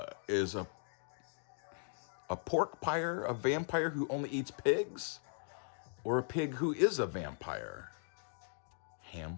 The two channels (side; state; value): right; silent; digital silence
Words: Is a pork pyre a vampire who only eats pigs? Or a pig who is a vampire?